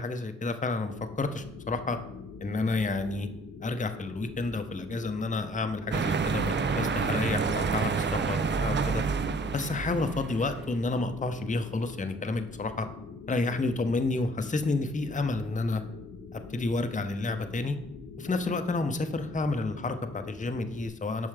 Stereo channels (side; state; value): both; normal; correlation 0.58